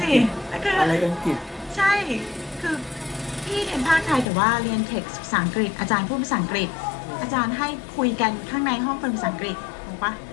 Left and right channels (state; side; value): drops out; right; at 4.2 s